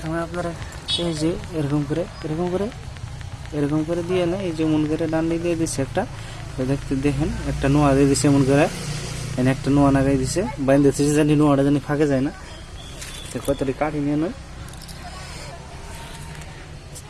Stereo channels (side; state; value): both; identical; correlation 1.00